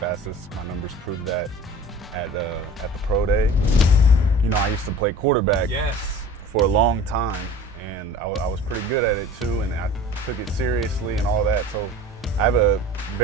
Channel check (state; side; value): normal; both; correlation 0.42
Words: My numbers prove that at the pro day. I used to play quarterback for a long time, and I was pretty good at it too, and I took it seriously and all that. So I have a